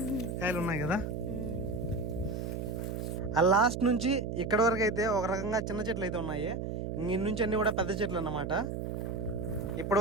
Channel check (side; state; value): right; noise; hum, 4 dB below the sound